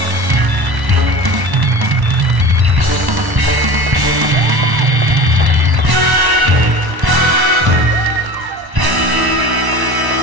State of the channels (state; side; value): late; left; 1.1 ms